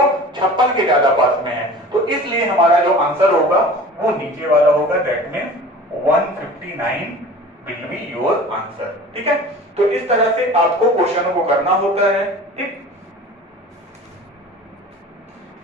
के ज्यादा पास में है, तो इसलिए हमारा जो आंसर होगा वो नीचे वाला होगा, that means 159 will be your answer. ठीक है, तो इस तरह से आपको क्वेश्चनों को करना होता है। ठीक,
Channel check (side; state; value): both; normal; correlation 0.41